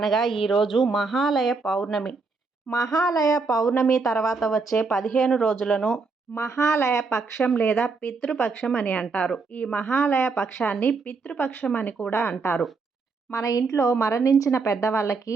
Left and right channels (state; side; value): quieter; left; 4.3 dB